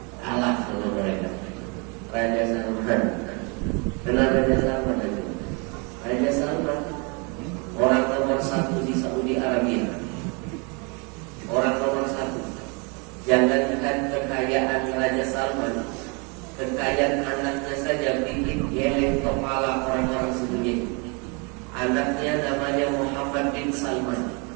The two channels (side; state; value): left; quieter; 32.5 dB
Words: kalah sama mereka. Raja Salman. Kenapa Raja Salman itu? Raja Salman orang nomor 1 di Saudi Arabia. Orang nomor 1. Jangankan kekayaan Raja Salman, kekayaan anaknya saja bikin geleng kepala orang-orang sedunia. Anaknya namanya Muhammad bin Salman,